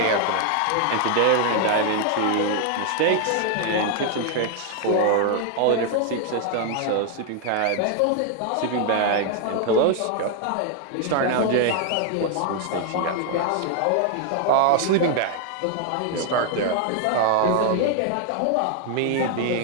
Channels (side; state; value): both; different; correlation 0.00